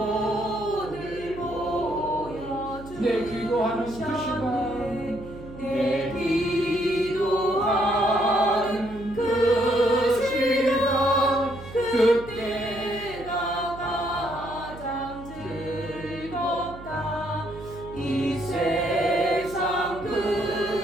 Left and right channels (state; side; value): noise; right; hum, 15 dB below the sound